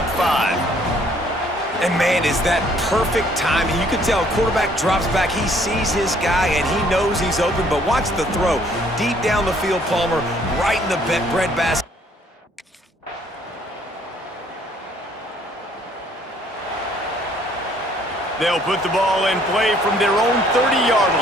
5? And man, is that perfect timing. You can tell quarterback drops back. He sees his guy, and he knows he's open. But watch the throw. Deep down the field, Palmer, right in the breadbasket. They'll put the ball in play from their own 30-yard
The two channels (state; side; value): normal; both; correlation 0.62